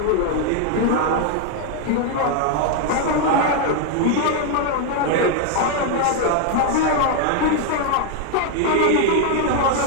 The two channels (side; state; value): both; different; correlation 0.00